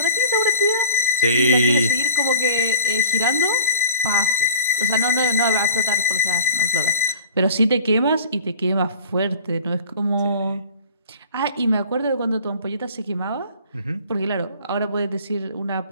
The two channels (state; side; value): inverted; both; correlation -0.41